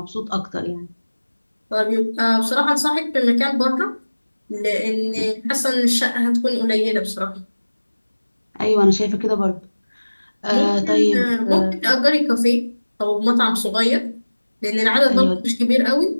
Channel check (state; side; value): inverted; both; correlation -1.00